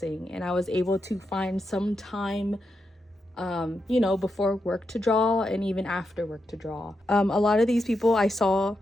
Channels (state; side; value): normal; both; correlation 0.85